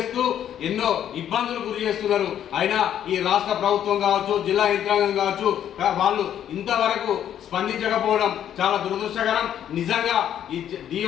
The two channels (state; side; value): quieter; right; 10.2 dB